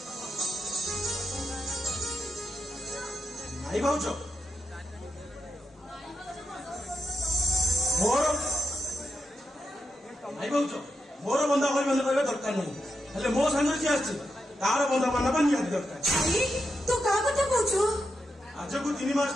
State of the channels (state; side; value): normal; both; correlation 0.86